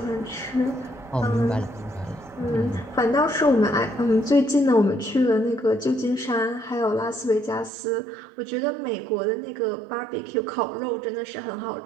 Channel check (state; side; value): drops out; left; at 7.7 s